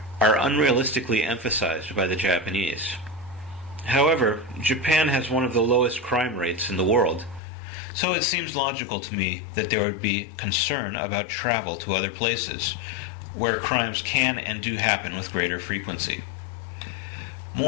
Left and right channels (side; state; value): right; drops out; at 7.4 s